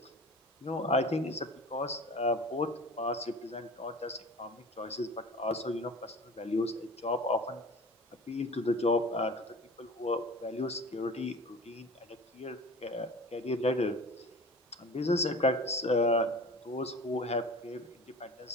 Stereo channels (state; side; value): normal; both; correlation 0.39